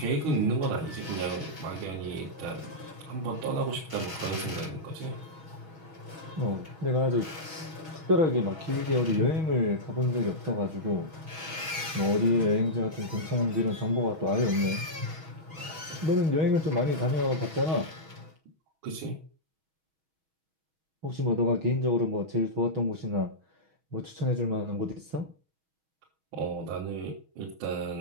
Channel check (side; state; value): left; late; 6.3 ms